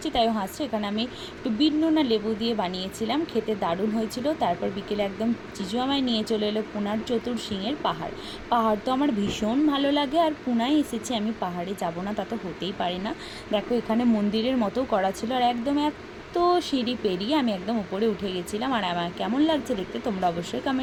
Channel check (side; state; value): both; identical; correlation 1.00